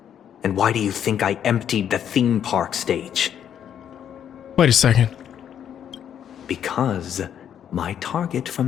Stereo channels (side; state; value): right; quieter; 9.3 dB